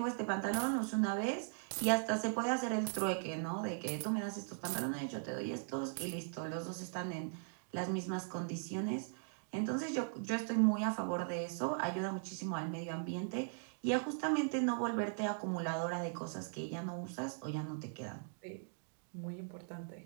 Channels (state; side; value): silent; left; digital silence